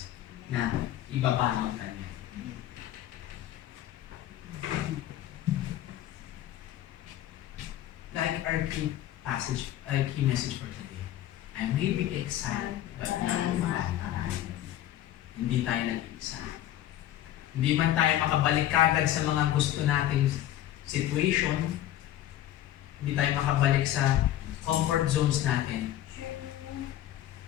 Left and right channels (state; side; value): quieter; right; 12.7 dB